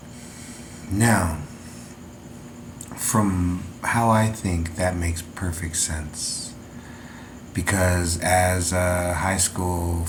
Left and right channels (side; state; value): both; identical; correlation 1.00